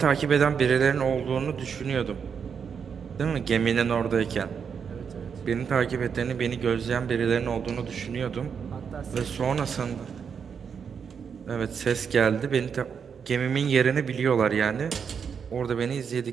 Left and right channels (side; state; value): left; quieter; 6.8 dB